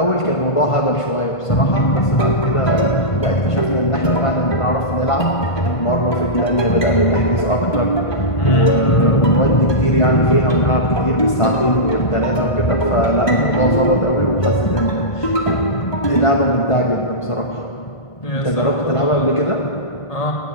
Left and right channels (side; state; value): right; late; 1.5 ms